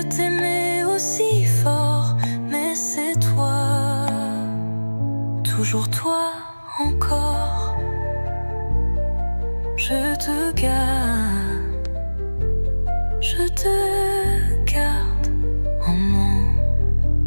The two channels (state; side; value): inverted; both; correlation -1.00